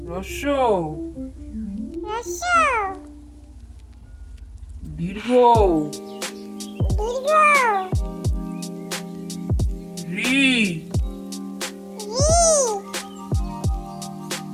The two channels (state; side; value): identical; both; correlation 1.00